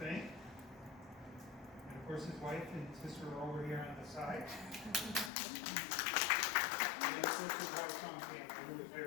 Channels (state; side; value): drops out; right; at 5.3 s